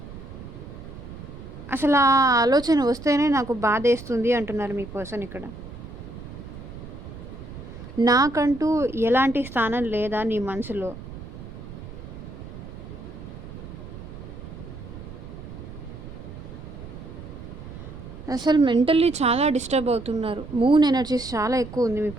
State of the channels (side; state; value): right; noise; rumble, 13 dB below the sound